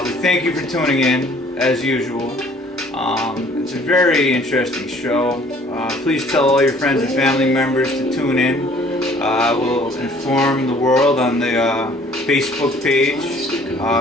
We thank you for tuning in as usual. It's a very interesting show. Please tell all your friends and family members to tune in. We'll inform the world on the Facebook page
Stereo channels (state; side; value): normal; both; correlation 0.56